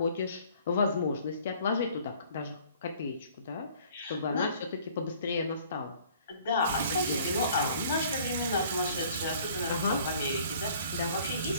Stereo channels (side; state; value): both; inverted; correlation -0.55